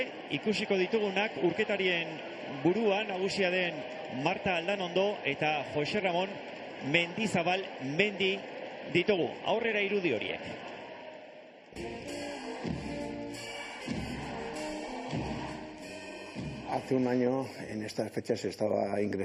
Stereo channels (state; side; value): identical; both; correlation 1.00